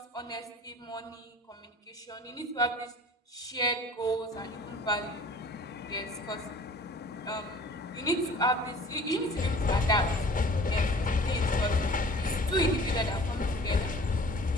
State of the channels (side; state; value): both; normal; correlation 0.47